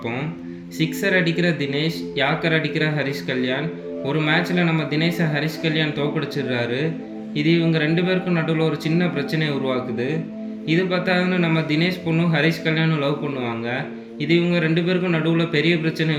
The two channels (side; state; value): both; identical; correlation 1.00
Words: சிக்ஸர் அடிக்கிற தினேஷ், யாக்கர் அடிக்கிற ஹரிஷ் கல்யாண். ஒரு மேட்ச்சில் நம்ம தினேஷை ஹரிஷ் கல்யாண் தோக்கடிச்சிடுறாரு. இது இவங்க ரெண்டு பேருக்கும் நடுவில் ஒரு சின்ன பிரச்சனையை உருவாக்குது. இது பார்த்தாதுன்னு நம்ம தினேஷ் பொண்ணும் ஹரிஷ் கல்யாணும் லவ் பண்ணுவாங்க. இது இவங்க ரெண்டு பேருக்கும் நடுவில் பெரிய பிரச்சனையை